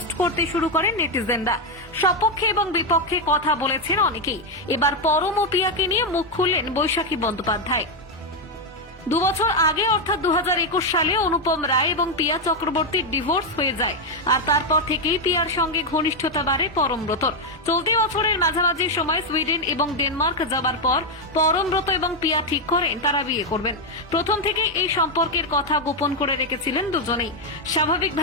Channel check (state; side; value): normal; both; correlation 0.04